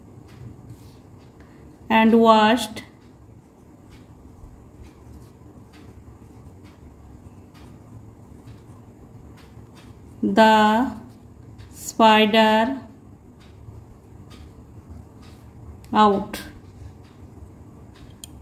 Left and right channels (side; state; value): both; identical; correlation 1.00